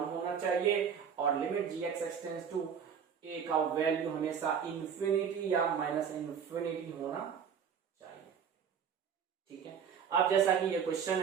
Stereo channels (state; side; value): quieter; left; 7.4 dB